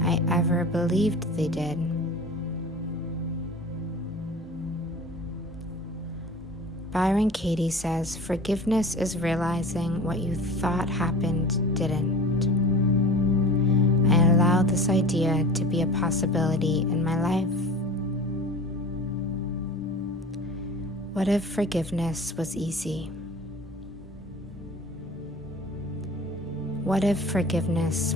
I ever believed they did. Byron Katie says, forgiveness is realizing what you thought happened didn't. I allow this idea to be a possibility in my life. What if forgiveness was easy? What if forgiveness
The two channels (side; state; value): both; normal; correlation 0.39